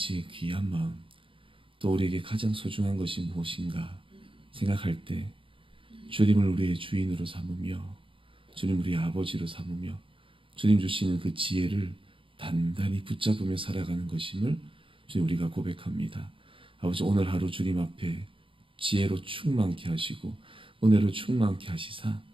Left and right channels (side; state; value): left; late; 0.25 ms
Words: 귀한 마음, 또 우리에게 가장 소중한 것이 무엇인가 생각할 때 주님을 우리의 주인으로 삼으며 주님 우리의 아버지로 삼으며 주님 주시는 그 지혜를 단단히 붙잡으며 살아가는 것임을 주님 우리가 고백합니다. 아버지, 오늘 하루 주님 앞에 지혜로 충만케 하시고 은혜로 충만케 하시사